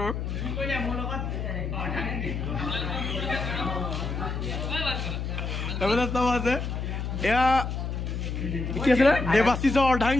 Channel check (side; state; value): left; noise; hum, 3 dB below the sound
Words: এইবিলাক চব আছে এয়া কি আছিলে দেৱাশীষৰ